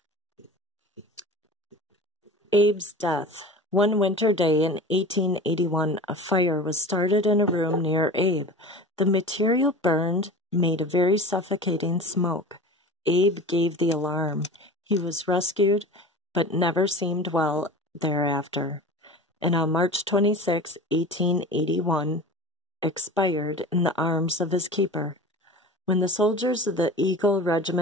Abe's death. One winter day in 1881, a fire was started in a room near Abe. The material burned, made a very suffocating smoke. Abe gave the alarm. He was rescued, but never seemed well thereafter. And on March 26, 1881, expired in the arms of his keeper. When the soldiers of the Eagle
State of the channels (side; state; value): both; normal; correlation 0.35